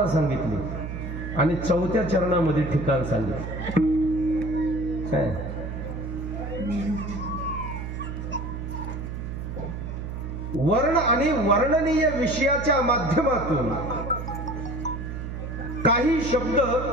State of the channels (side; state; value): right; noise; hum, 6 dB below the sound